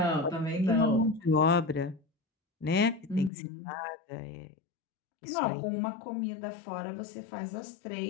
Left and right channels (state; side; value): drops out; right; at 3.3 s